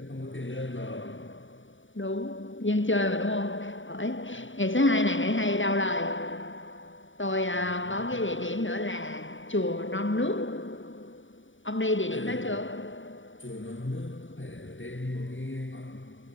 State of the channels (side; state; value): right; late; 0.56 ms